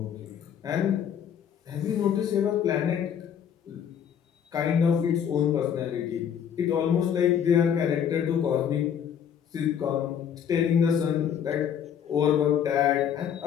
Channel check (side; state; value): right; quieter; 8.5 dB